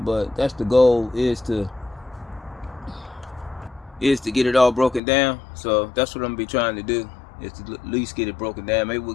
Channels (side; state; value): right; drops out; at 5.0 s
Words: But that's the goal, is to get it all broken down. So that's what I'm gonna be trying to do, is to at least get it broken down. Maybe we'll